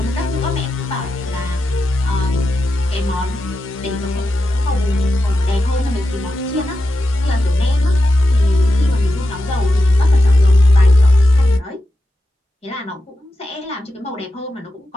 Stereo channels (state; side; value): normal; both; correlation 0.90